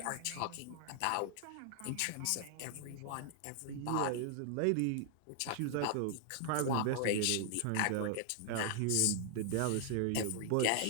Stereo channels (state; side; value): different; both; correlation 0.00